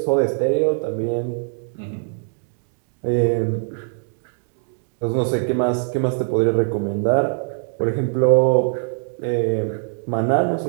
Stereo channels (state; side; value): silent; left; 64 dB below the other